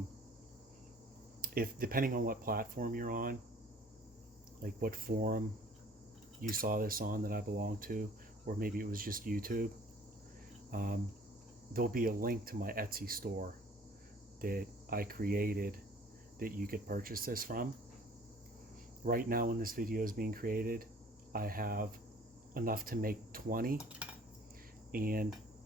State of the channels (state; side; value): normal; both; correlation 0.53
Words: If depending on what platform you're on, like what forum you saw this on that I belong to, or maybe it was just YouTube, there'll be a link to my Etsy store that I created that you could purchase this from. Right now when this video is being created, I have enough to make 20 and